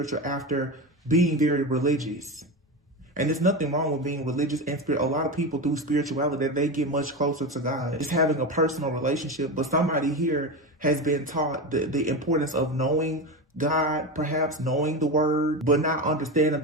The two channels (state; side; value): normal; both; correlation 0.20